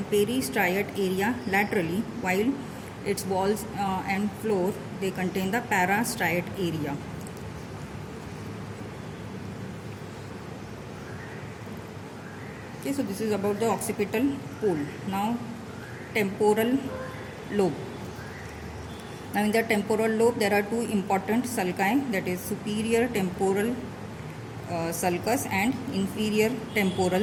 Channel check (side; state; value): both; identical; correlation 1.00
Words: peristriate area laterally, while its walls and floor, they contain the parastriate area. Okay, so this is about the occipital pole. Now temporal lobe. Now in the temporal lobe, there are two important sulci, that is superior temporal sulcus and inferior